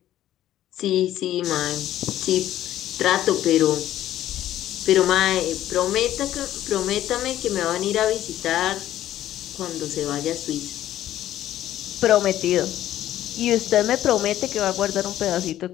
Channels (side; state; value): right; quieter; 12.8 dB